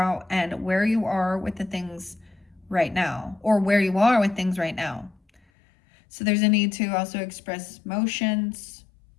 and where you are with the things right now, or where you are with things right now. So there's a need to also express emotions,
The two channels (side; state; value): right; drops out; at 5.4 s